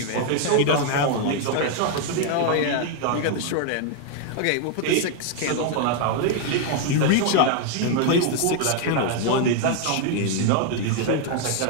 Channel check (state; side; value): different; both; correlation 0.00